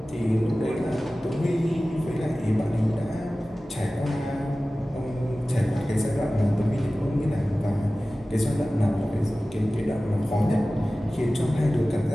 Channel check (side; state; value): both; normal; correlation 0.96